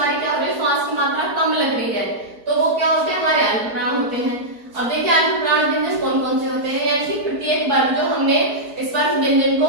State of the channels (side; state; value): left; late; 4.5 ms